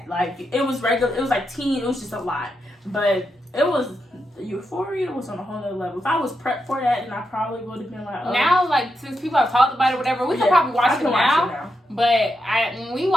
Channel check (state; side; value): normal; both; correlation 0.85